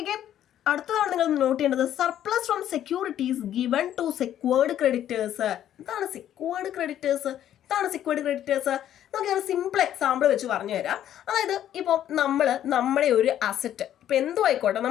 അടുത്തതാണ് നിങ്ങൾ നോട്ട് ചെയ്യേണ്ടത്, surplus from securities given to secured creditors. എന്താണ് സെക്യൂർഡ് ക്രെഡിറ്റേഴ്സ്? നമുക്ക് ഒരു സിമ്പിൾ എക്സാമ്പിൾ വെച്ച് പറഞ്ഞു തരാം. അതായത് ഇപ്പോൾ നമ്മുടെ ഒരു അസറ്റ്, ഇപ്പോൾ എന്തോ ആയിക്കോട്ടെ,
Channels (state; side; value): quieter; right; 11.2 dB